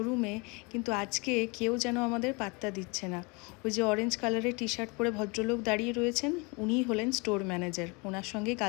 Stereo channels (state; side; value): quieter; right; 29.2 dB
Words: কিন্তু আজকে কেউ যেন আমাদের পাত্তা দিচ্ছে না। ওই যে অরেঞ্জ কালারের টি শার্ট পরে ভদ্রলোক দাঁড়িয়ে রয়েছেন, উনিই হলেন স্টোর ম্যানেজার। ওনার সঙ্গেই